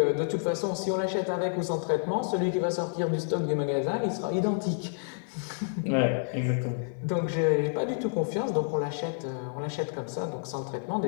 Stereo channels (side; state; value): right; silent; digital silence